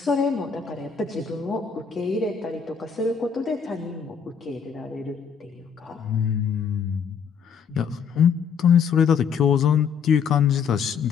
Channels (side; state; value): right; quieter; 6.7 dB